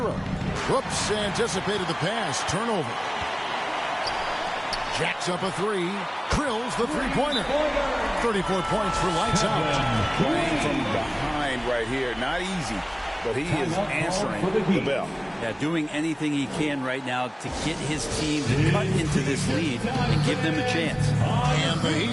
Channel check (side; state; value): both; identical; correlation 1.00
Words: Whoops, anticipated the pass. Turnover. Jacks up a 3. Drills the three-pointer. 34 points for lights out. Playing from behind right here. Not easy, but he is answering the bell. Yeah, doing anything he can right now to get his team to cut into this lead and give them a chance. And the